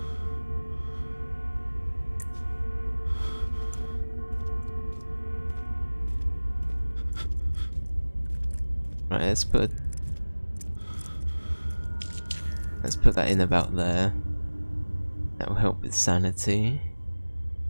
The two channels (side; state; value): both; inverted; correlation -1.00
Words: Right, let's put that in about there. That will help with sanity.